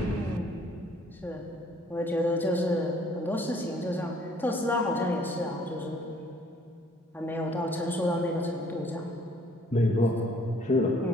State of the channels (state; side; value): normal; both; correlation 0.60